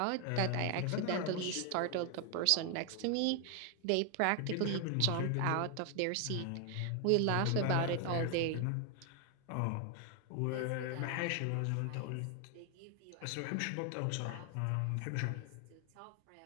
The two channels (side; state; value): both; different; correlation 0.01